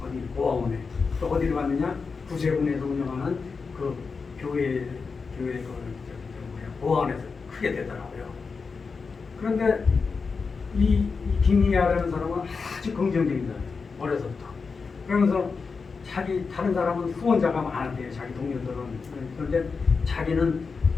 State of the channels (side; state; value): right; quieter; 4.9 dB